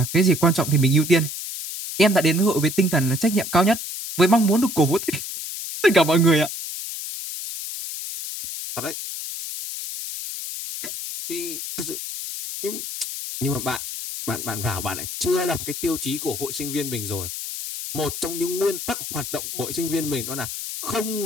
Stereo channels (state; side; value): noise; left; hiss, 7 dB below the sound